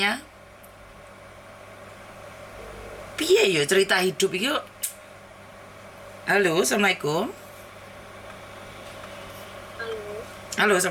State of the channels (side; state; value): both; identical; correlation 1.00